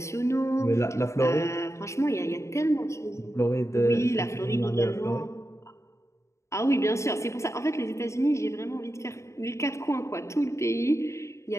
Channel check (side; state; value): right; late; 0.14 ms